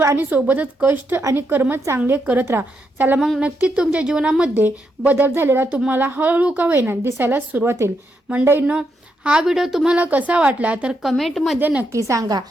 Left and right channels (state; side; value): normal; both; correlation 0.81